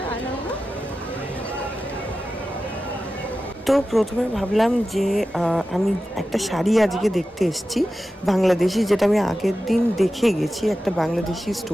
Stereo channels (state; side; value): normal; both; correlation 0.94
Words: তো প্রথমে ভাবলাম যে আমি একটা শাড়ি আজকে দেখতে এসেছি বাংলাদেশি, যেটা আমি আগের দিন দেখে গেছি একটা বাংলাদেশি